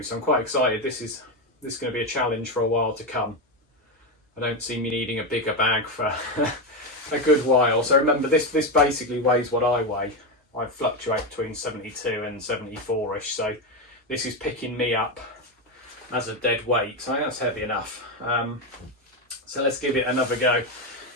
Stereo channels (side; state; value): both; normal; correlation 0.10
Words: So I'm quite excited. This is going to be a challenge for a while to come. I don't see me needing a bigger bag for a good while. So remember, this basically weighs what I weigh. I fluctuate between 72 and 74ish, so this is picking me up as a dead weight. So I think that's heavy enough. So let's give it another go.